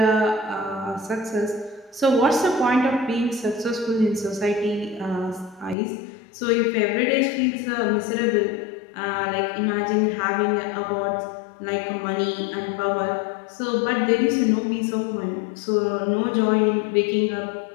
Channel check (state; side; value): drops out; right; at 5.8 s